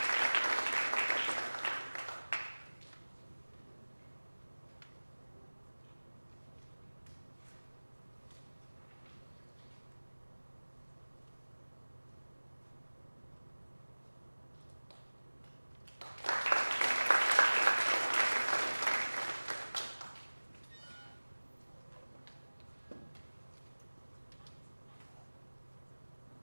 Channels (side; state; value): both; inverted; correlation -1.00